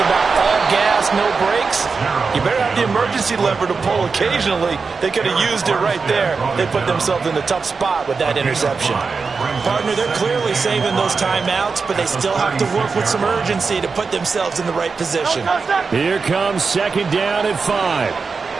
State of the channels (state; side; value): quieter; left; 4.8 dB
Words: about all gas, no brakes, you better have the emergency lever to pull occasionally. They could have used it right there. They put themselves in a tough spot with that interception. Partner, they're clearly saving those timeouts, but they still have to work with some urgency to put themselves in the right position. Here comes 2nd down and 5.